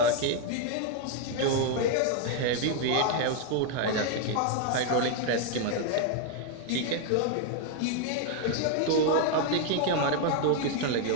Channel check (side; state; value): both; different; correlation 0.00